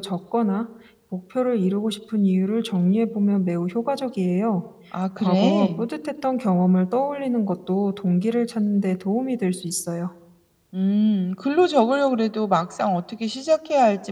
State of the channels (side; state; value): both; identical; correlation 1.00